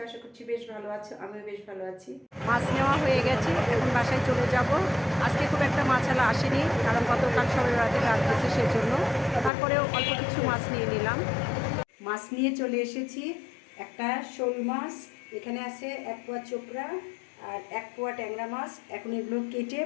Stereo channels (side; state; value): right; drops out; at 9.5 s